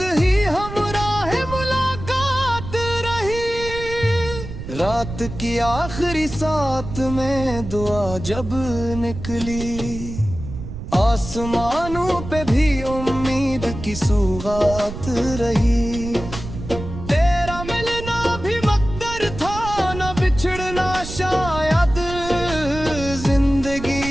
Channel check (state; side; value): noise; right; rumble, 10 dB below the sound